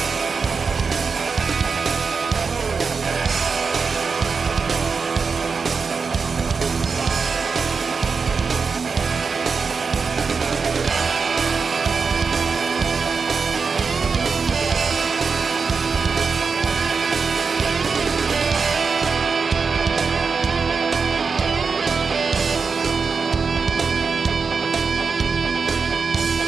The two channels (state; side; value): quieter; left; 5.1 dB